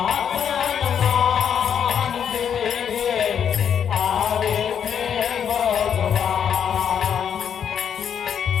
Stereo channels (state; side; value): quieter; right; 8.2 dB